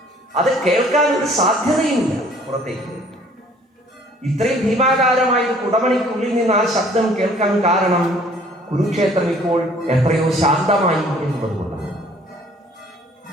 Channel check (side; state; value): both; normal; correlation 0.56